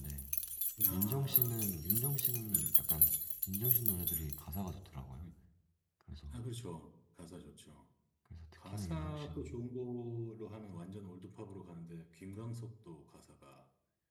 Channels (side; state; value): both; identical; correlation 1.00